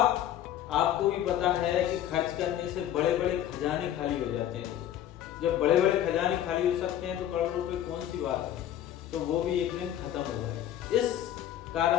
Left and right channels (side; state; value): right; quieter; 11.5 dB